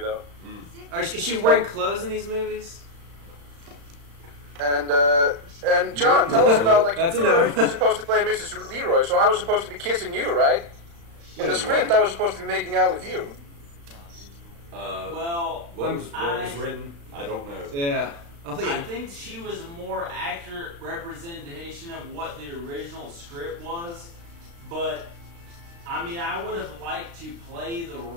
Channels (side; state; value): left; late; 35 ms